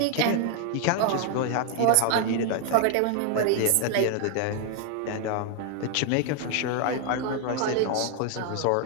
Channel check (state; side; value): different; both; correlation 0.00